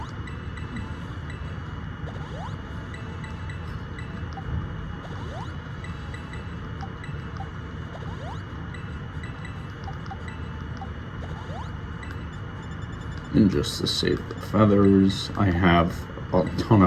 And just to save the feathers, I have a ton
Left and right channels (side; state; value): both; identical; correlation 1.00